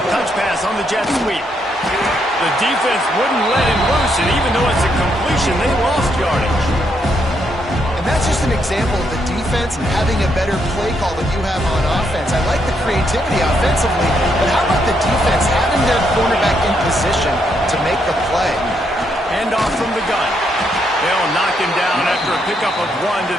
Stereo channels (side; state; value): both; normal; correlation 0.76